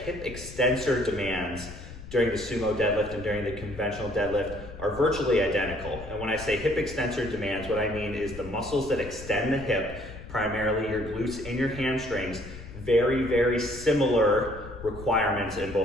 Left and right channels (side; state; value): left; noise; rumble, 13 dB below the sound